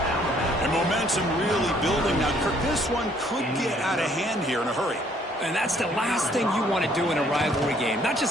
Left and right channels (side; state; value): both; normal; correlation 0.64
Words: And momentum really building. Now, Kirk, this one could get out of hand here in a hurry. And that's the last thing you want to do in a rivalry game. Not